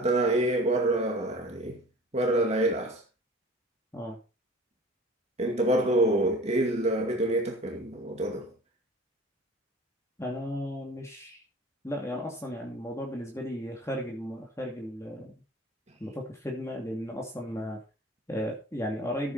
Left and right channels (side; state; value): both; normal; correlation 0.43